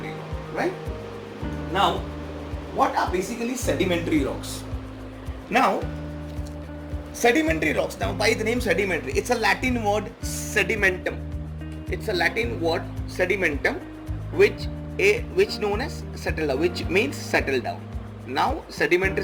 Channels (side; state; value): both; identical; correlation 1.00